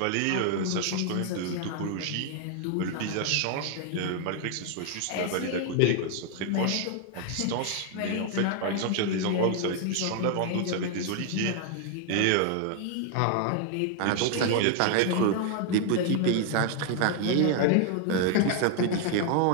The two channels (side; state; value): both; different; correlation 0.00